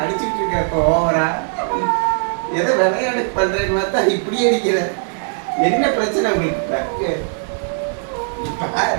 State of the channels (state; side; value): silent; left; 66 dB below the other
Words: அடிச்சுட்டு இருக்க இப்போ ஓவரா. ஏதோ விளையாட்டு பண்றேன்னு பார்த்தா இப்படியே அடிக்கிற. என்ன பிரச்சனை உங்களுக்கு?